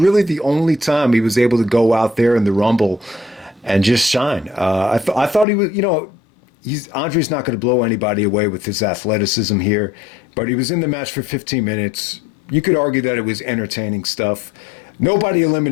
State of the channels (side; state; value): right; drops out; at 5.5 s